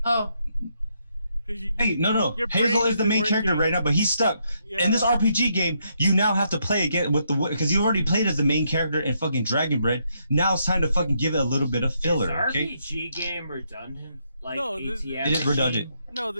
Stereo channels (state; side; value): inverted; both; correlation -0.76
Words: Hey, no. Hazel is the main character right now, but he's stuck. Yeah. In this RPG game, you now have to play again with because you already played as the main character in fucking Dragon Bread. Now it's time to fucking give it a little bit of filler. Is RPG game redundant? Like no, ATM it is redundant. No,